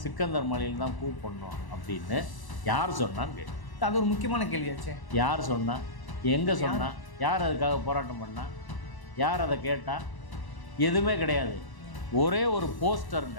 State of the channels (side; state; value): right; late; 1.0 ms